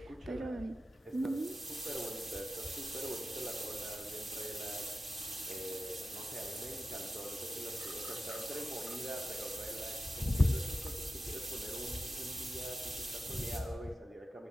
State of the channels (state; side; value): normal; both; correlation 0.93